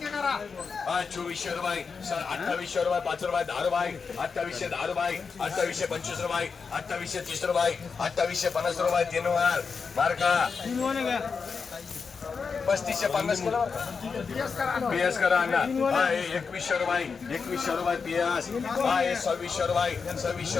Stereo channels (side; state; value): right; quieter; 5.4 dB